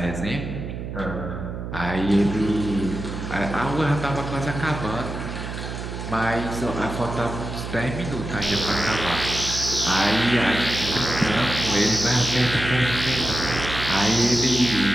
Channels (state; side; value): noise; right; hum, 7 dB below the sound